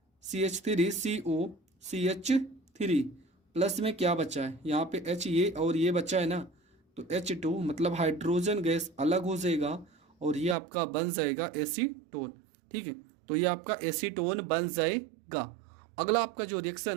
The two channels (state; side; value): drops out; left; at 10.6 s